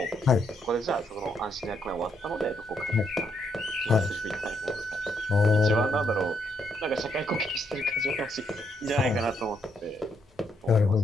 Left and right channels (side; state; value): both; normal; correlation 0.76